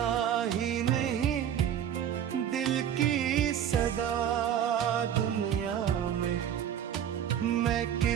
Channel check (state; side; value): quieter; left; 9.6 dB